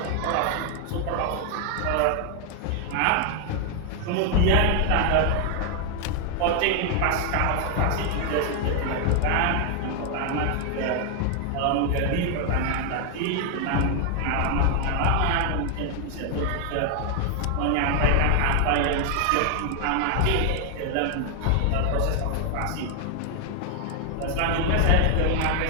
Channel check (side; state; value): both; different; correlation 0.00